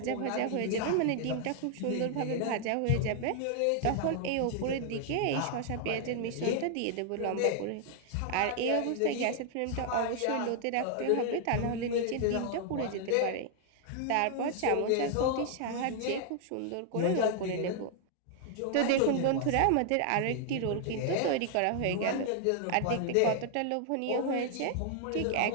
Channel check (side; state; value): both; different; correlation 0.00